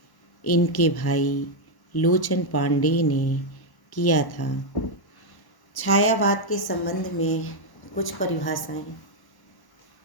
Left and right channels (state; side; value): late; right; 1.1 ms